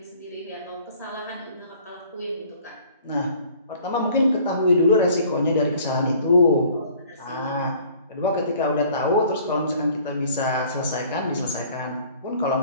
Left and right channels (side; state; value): both; inverted; correlation -0.53